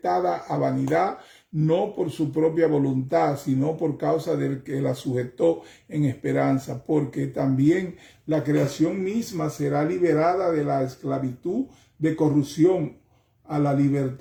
a vanidad, no por su propia voluntad, sino por causa del que la sujetó en esperanza, porque también la creación misma será liberada de la esclavitud de corrupción a la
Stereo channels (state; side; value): identical; both; correlation 1.00